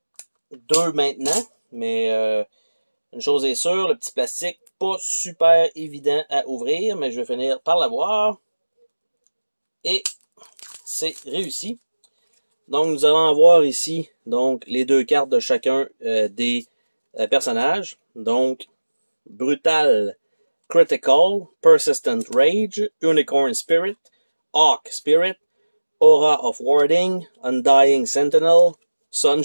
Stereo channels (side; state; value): both; inverted; correlation -1.00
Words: 2 maintenant. Mais une chose est sûre, le petit plastique, pas super évident à ouvrir, mais je vais finir par l'avoir. Et c'est réussi. Donc, nous allons avoir ici donc les 2 cartes de chacun des personnages. Donc, Brutal Critical, Persistent Rage, Unicorn Spirit, Hawk Spirit, Aura of Warding, Undying Sentinel, Sun